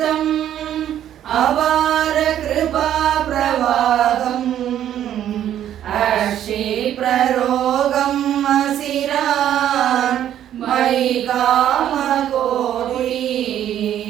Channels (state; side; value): quieter; left; 11.0 dB